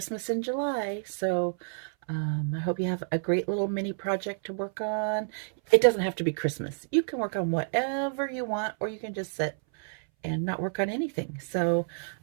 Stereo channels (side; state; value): left; silent; 58 dB below the other